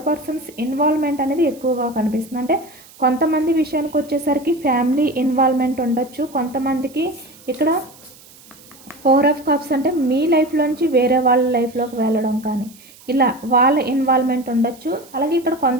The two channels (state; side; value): noise; right; hiss, 23 dB below the sound